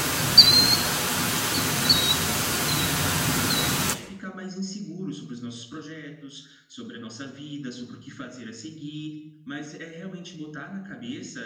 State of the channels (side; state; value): both; identical; correlation 1.00